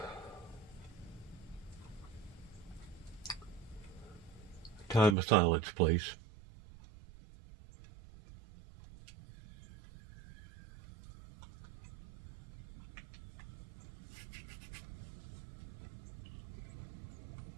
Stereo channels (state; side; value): drops out; left; at 5.2 s